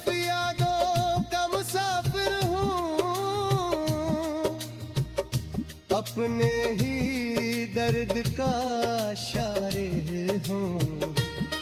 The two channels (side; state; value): both; identical; correlation 1.00